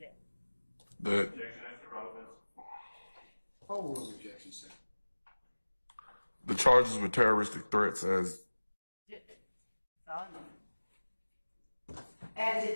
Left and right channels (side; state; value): both; inverted; correlation -1.00